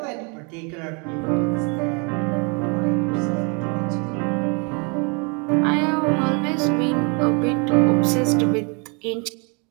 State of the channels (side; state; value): left; quieter; 33.1 dB